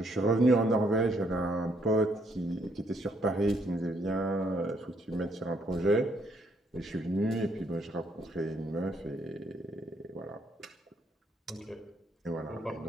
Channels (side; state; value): both; normal; correlation 0.71